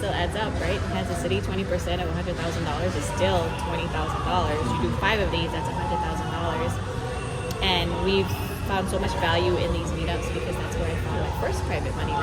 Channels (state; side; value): identical; both; correlation 1.00